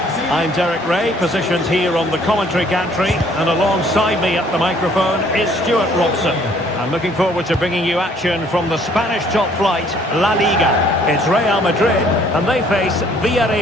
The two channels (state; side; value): normal; both; correlation 0.60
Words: I'm Derek Ray, positioned here on the commentary gantry, and alongside me at the microphone is Stuart Robson. I'm looking forward to bringing you action from the Spanish top flight, La Liga. It's Real Madrid, and they face